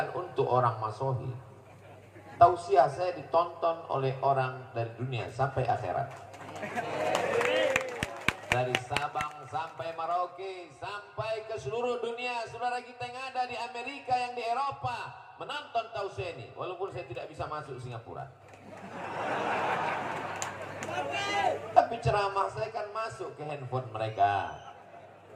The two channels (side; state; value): both; identical; correlation 1.00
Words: untuk orang Masohi. Tausiah saya ditonton oleh orang dari dunia sampai akhirat. Dari Sabang sampai Merauke, sampai ke seluruh dunia. Saudara kita yang ada di Amerika, yang di Eropa, menonton tausiah ini. Walaupun saya tidak bisa masuk Singapura. Tapi ceramah saya kan masuk ke handphone mereka.